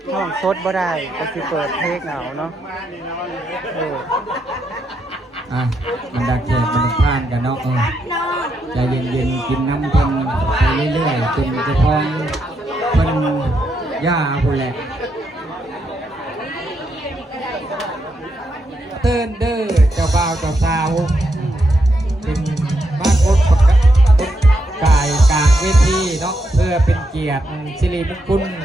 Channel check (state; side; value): normal; both; correlation 0.81